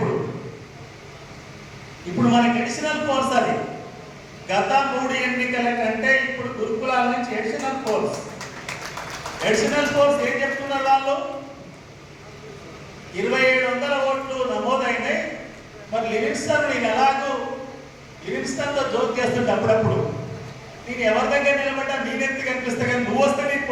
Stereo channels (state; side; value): identical; both; correlation 1.00